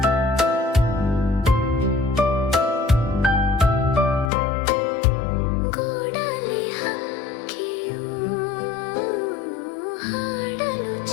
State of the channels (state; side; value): drops out; right; at 4.3 s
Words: ಗೂಡಲಿ ಹಕ್ಕಿಯು ಹಾಡಲು